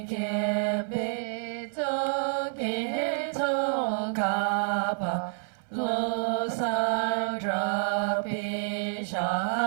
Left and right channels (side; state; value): left; silent; 59 dB below the other